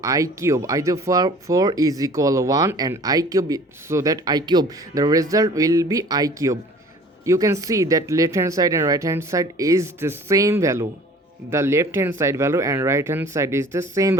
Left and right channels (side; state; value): both; normal; correlation 0.48